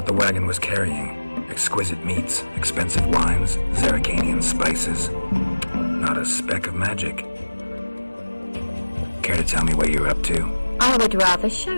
the wagon was carrying. Exquisite meats, expensive wines, Zerricanian spices. Not a speck of magic. Care to tell me what you're up to? I would rather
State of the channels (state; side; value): inverted; both; correlation -1.00